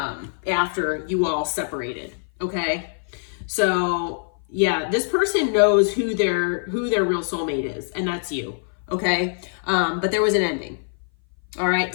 after you all separated, okay? So yeah, this person knows who their real soulmate is, and that's you, okay? But there was an ending. All right,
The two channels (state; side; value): silent; right; 58 dB below the other